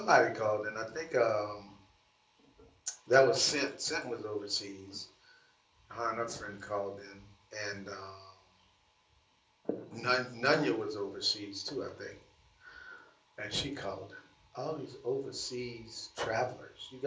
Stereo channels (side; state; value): both; identical; correlation 1.00